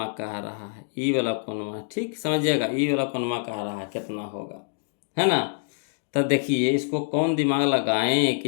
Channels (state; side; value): silent; right; 61 dB below the other